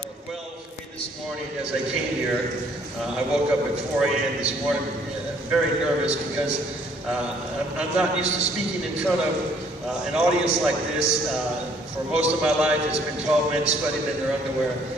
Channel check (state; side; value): normal; both; correlation 0.62